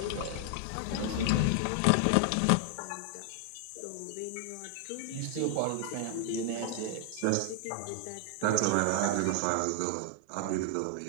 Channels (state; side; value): different; both; correlation 0.00